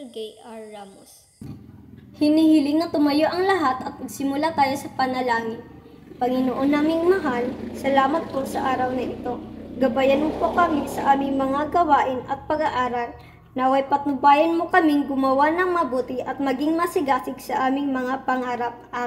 Gay R. Ramos. Hinihiling na tumayo ang lahat at magsimula tayo sa panalangin. Panginoon naming mahal, salamat po sa araw na ito. Gabayan mo po kami sa aming mga gawain at pag-aaral. Naway patnubayan mo kaming gumawa ng mabuti at maging masigasig sa aming mga pangarap.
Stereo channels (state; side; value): identical; both; correlation 1.00